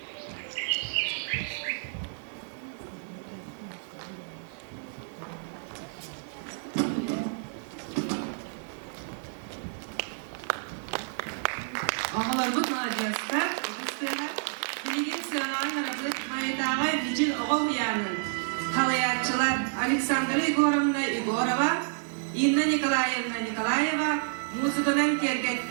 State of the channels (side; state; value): left; silent; digital silence